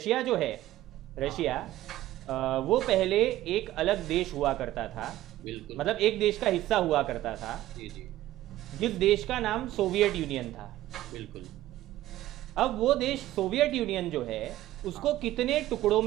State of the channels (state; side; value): quieter; left; 14.9 dB